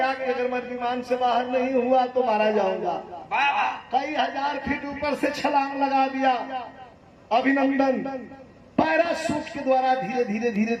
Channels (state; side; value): identical; both; correlation 1.00